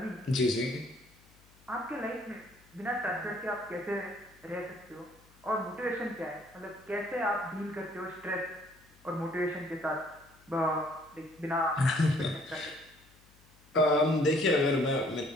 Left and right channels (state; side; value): noise; left; hum, 28 dB below the sound